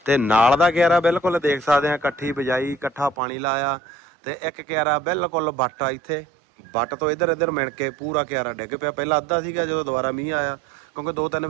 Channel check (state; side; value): drops out; left; at 3.2 s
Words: ਤੇ ਨਾਲ ਦਾ ਕਿਆਰਾ ਬਿਲਕੁਲ ਦੇਖ ਸਕਦੇ ਆ ਇਕੱਠੀ ਬਿਜਾਈ, ਇਕੱਠਾ ਪਾਣੀ ਲਾਇਆ ਤੇ ਇੱਕ ਕਿਆਰਾ ਬਿਲਕੁਲ ਵੱਟ ਆ ਇੱਥੇ, ਵੱਟ ਤੋਂ ਇੱਧਰ ਇੱਧਰ ਮਿਣ ਕੇ ਪੂਰਾ ਕਿਆਰਾ ਡਿੱਗ ਪਿਆ। ਪਹਿਲਾਂ ਅੱਧਾ ਸੀਗਾ, ਜਦੋਂ ਦੁਬਾਰਾ ਮੀਂਹ ਆਇਆ, ਕਿਉਂਕਿ 2-3